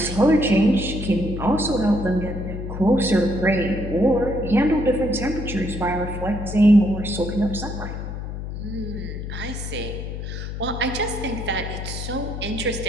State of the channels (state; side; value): noise; left; hum, 7 dB below the sound